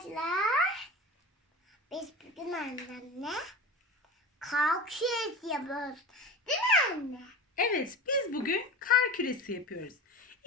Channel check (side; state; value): both; normal; correlation 0.31